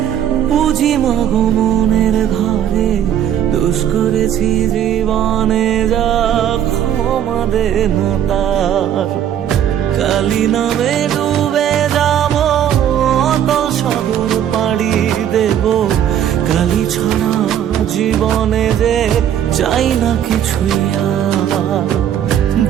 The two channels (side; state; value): left; quieter; 10.0 dB